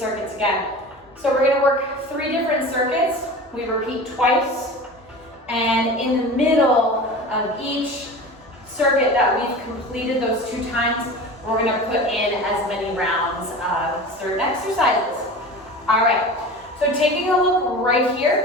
again. So we're gonna work 3 different circuits. We repeat twice. And in the middle of each circuit that we've completed those 2 times, we're gonna put in as many rounds of certain exercises. All right, so taking a look right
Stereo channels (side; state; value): both; normal; correlation 0.34